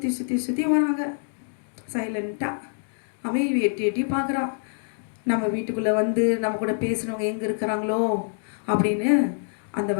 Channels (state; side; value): silent; right; digital silence